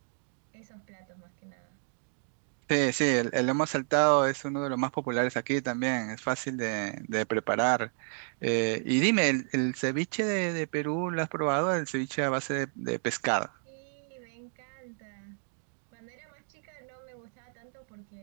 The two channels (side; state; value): left; silent; 57 dB below the other